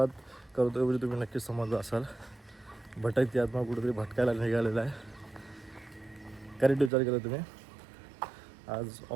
करतोय म्हणजे तुम्ही नक्कीच समजलं असाल. भटकती आत्मा कुठेतरी भटकायला निघालेला आहे. करेक्ट विचार केला तुम्ही. आज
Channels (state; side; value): drops out; left; at 6.9 s